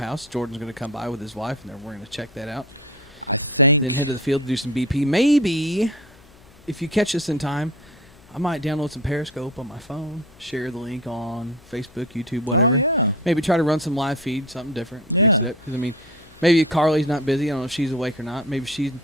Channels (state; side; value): noise; left; hum, 25 dB below the sound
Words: Jordan's gonna come by with his wife, and then we're gonna check that out. Then head to the field to do some BP. Maybe if you catch us in time, I might download some Periscope on my phone, share the link on Facebook, YouTube, whatever. Maybe try to run some live feed, something different, mix it up. Because I mean, maybe Carly's not busy. I don't know if she's awake or not. Maybe she's